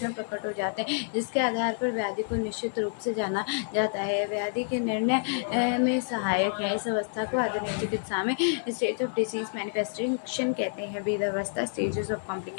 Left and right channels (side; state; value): right; silent; 59 dB below the other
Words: प्रकट हो जाते हैं जिसके आधार पर व्याधि को निश्चित रूप से जाना जाता है। व्याधि के निर्णय में सहायक है। इस अवस्था को आधुनिक चिकित्सा में स्टेज ऑफ डिसीज मैनिफेस्टेशन कहते हैं। वेद अवस्था स्टेजेस ऑफ